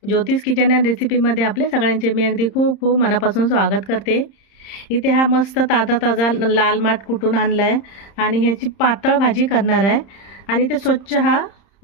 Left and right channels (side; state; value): right; late; 30 ms